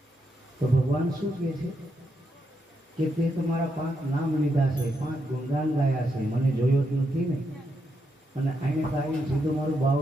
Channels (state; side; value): normal; both; correlation 0.81